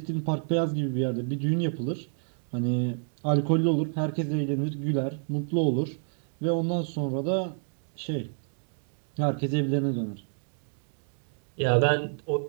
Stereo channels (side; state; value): left; silent; digital silence